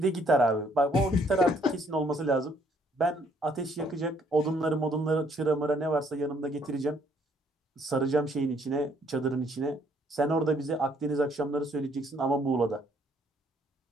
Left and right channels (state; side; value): normal; both; correlation 0.65